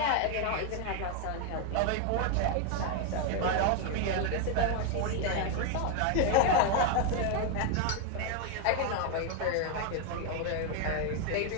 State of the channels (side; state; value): both; different; correlation 0.01